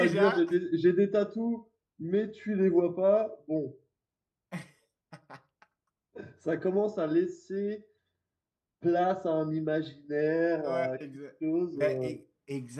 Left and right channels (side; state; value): both; identical; correlation 1.00